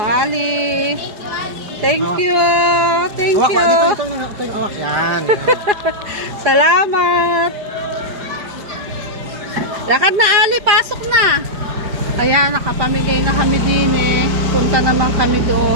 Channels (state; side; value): late; left; 4.8 ms